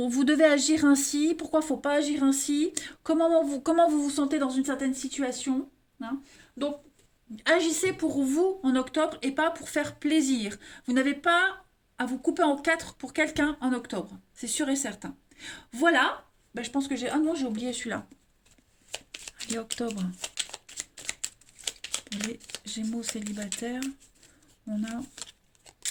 devez agir ainsi, pourquoi il ne faut pas agir ainsi, comment vous vous sentez dans une certaine situation. Hein. Donc, agissez pour vous en octobre et pas pour faire plaisir. Vous n'avez pas à vous couper en quatre pour quelqu'un en octobre. C'est sûr et certain. Voilà. Ben, je pense que j'ai... Ah non, j'ai oublié celui-là. Et octobre, les Gémeaux célibataires, on a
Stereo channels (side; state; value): both; identical; correlation 1.00